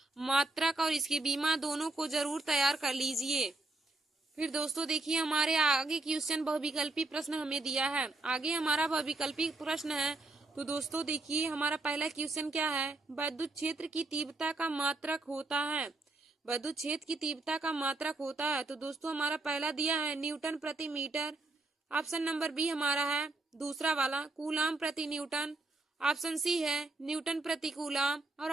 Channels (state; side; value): quieter; left; 3.1 dB